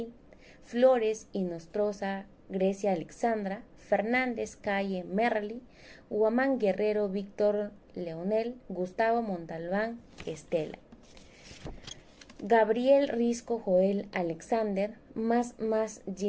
Flores y Nostroza Grecia Alexandra, Fernández Calle Merli, Huamán Guerrero Víctor Leonel, Gustavo Montalbán Estela, Gabriel Risco Joel Alexander, más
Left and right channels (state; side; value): identical; both; correlation 1.00